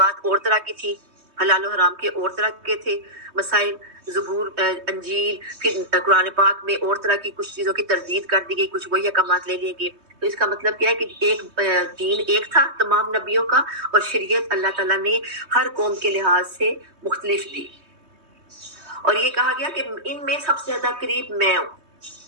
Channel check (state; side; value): late; left; 3.2 ms